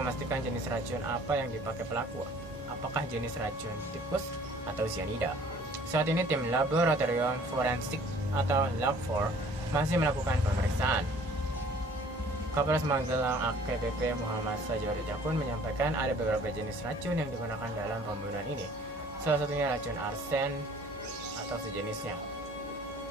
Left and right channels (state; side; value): normal; both; correlation 0.53